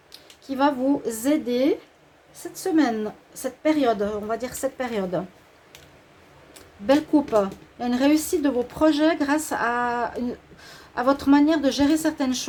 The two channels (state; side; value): identical; both; correlation 1.00